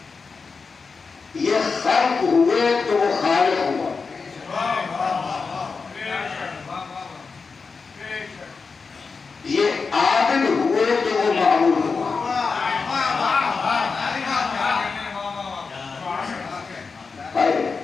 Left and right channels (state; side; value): quieter; right; 4.8 dB